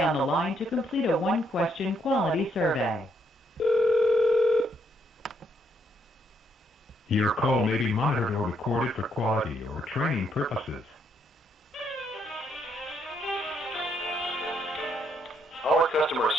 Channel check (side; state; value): both; normal; correlation 0.73